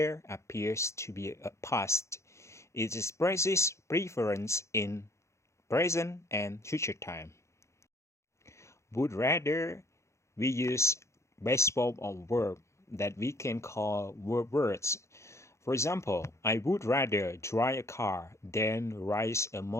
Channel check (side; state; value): right; late; 0.14 ms